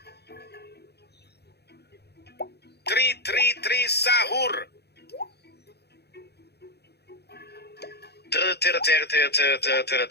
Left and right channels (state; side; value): late; right; 0.48 ms